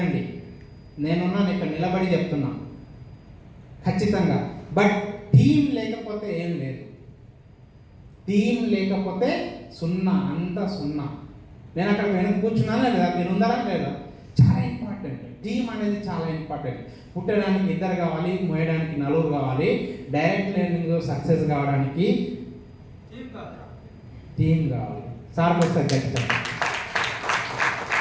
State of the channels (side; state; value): both; identical; correlation 1.00